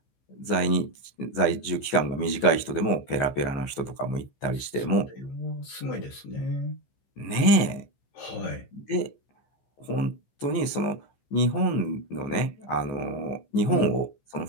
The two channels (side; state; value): right; late; 14 ms